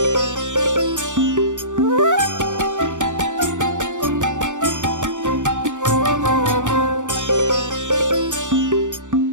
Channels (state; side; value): late; left; 0.86 ms